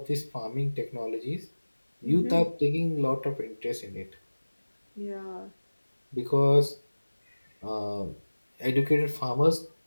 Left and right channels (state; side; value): inverted; both; correlation -1.00